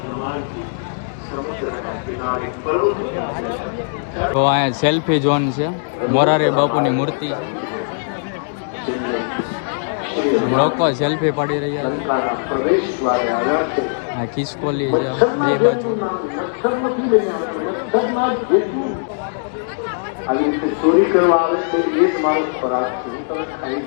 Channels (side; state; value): right; silent; digital silence